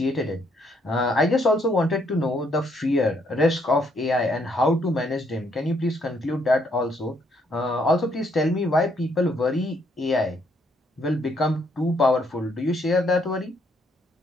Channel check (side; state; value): both; normal; correlation 0.71